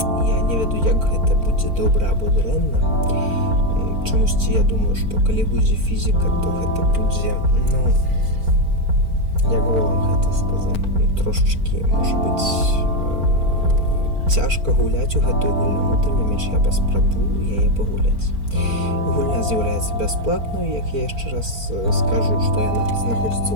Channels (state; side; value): late; left; 4.4 ms